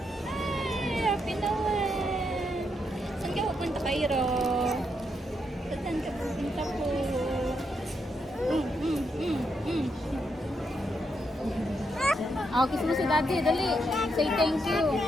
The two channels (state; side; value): normal; both; correlation 0.80